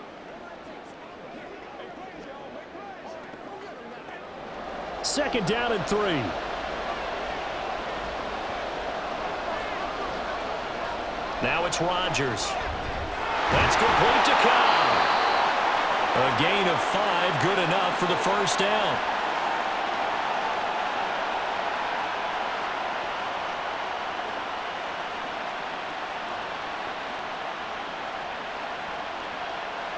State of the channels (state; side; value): identical; both; correlation 1.00